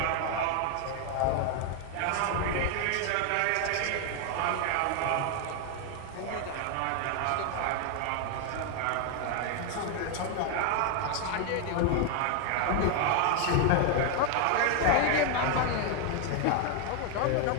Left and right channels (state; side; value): different; both; correlation 0.01